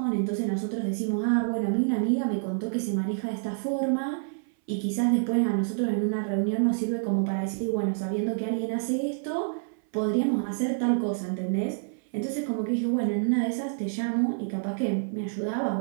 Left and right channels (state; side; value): silent; left; 60 dB below the other